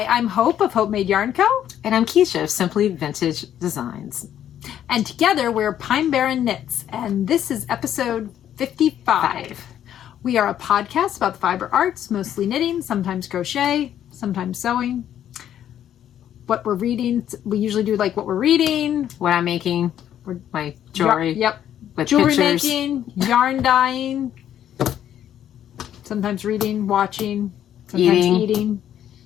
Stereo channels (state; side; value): quieter; right; 10.6 dB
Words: I'm Hope of Hopemade Yarn Co. And I'm Kiesha of Simply Vintage Designs. And together we're Pine Barren Knits, and this is episode 55. We are a podcast about the fiber arts, mostly knitting, sometimes crochet, sometimes sewing. What we're reading, we usually do like what we're reading. What I'm making, my jewelry. Yep. With Jewelry pictures. making, yarn dyeing, sometimes reading, watching, sometimes eating.